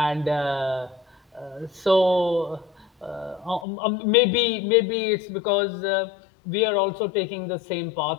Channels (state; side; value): drops out; right; at 3.7 s